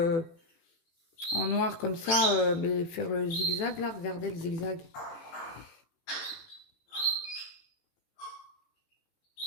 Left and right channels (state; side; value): late; right; 18 ms